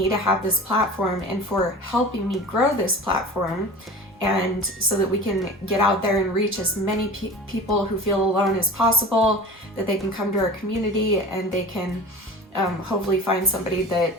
to have this platform and for helping me grow this platform, and so that we can get out there and reach as many people who feel alone as possible, that they can come to our community and they can hopefully find somebody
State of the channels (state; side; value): normal; both; correlation 0.37